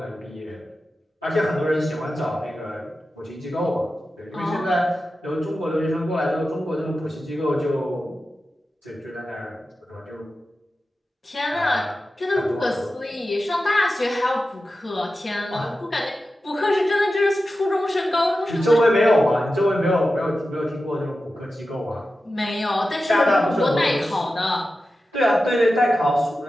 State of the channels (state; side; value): normal; both; correlation 0.92